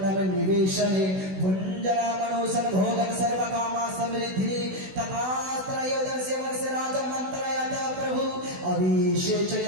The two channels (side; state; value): left; late; 16 ms